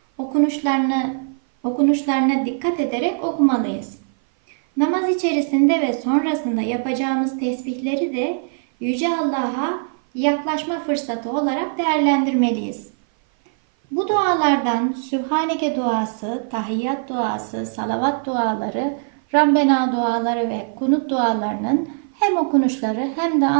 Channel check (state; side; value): silent; left; 57 dB below the other